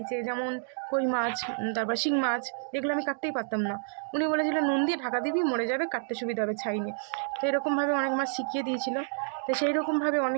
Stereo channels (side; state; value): left; silent; digital silence